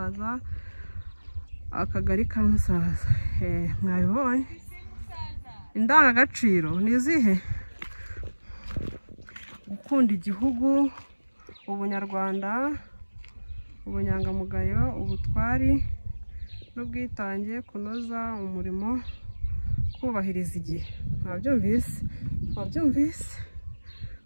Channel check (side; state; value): both; inverted; correlation -1.00